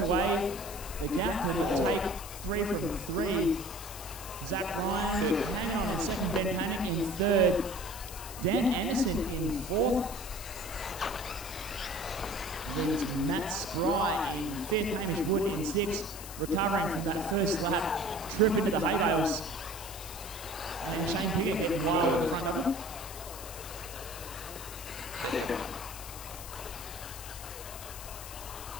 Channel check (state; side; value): noise; left; hiss, 12 dB below the sound